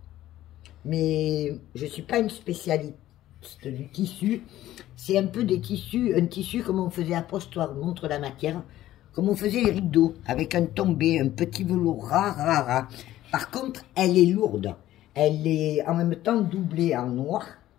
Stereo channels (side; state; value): right; quieter; 14.0 dB